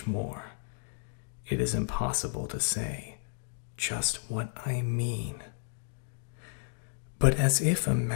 more? It is impossible to say just what I mean. But as if a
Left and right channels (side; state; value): right; silent; 56 dB below the other